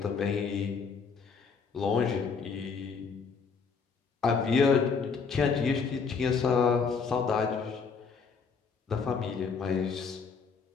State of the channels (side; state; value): right; quieter; 5.4 dB